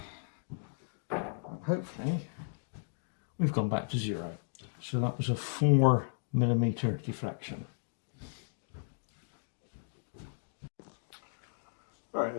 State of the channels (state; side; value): silent; right; digital silence